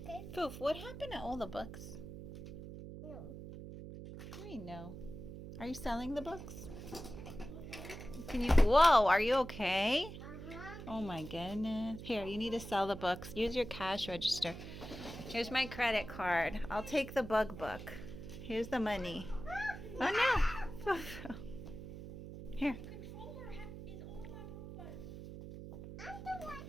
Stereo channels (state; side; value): noise; right; hum, 11 dB below the sound